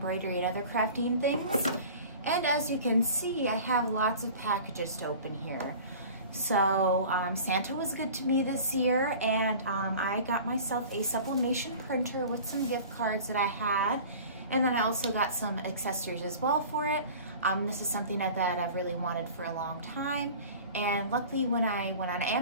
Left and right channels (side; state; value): both; inverted; correlation -0.41